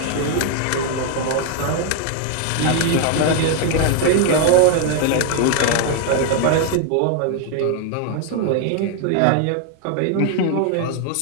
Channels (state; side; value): different; both; correlation 0.00